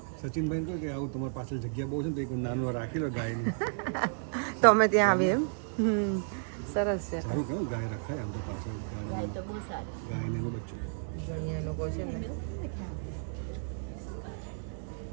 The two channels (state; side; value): silent; left; digital silence